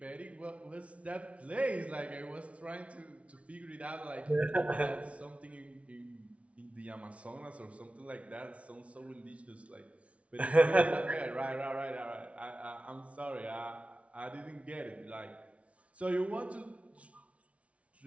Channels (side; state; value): left; late; 0.063 ms